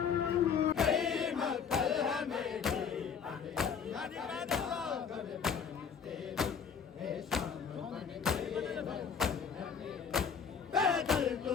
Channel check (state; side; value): quieter; right; 6.7 dB